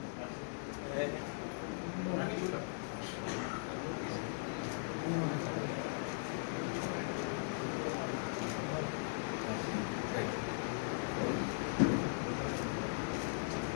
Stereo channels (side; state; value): right; silent; digital silence